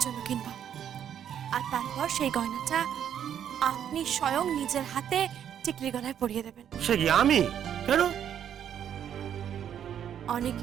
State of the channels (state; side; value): quieter; left; 9.4 dB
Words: জন্য কিনবো, আর তারপর সেই গয়নাটা আপনি স্বয়ং নিজের হাতে টিকলির গলায় পরিয়ে দেবেন। সে কি আমি? কেন? অনেক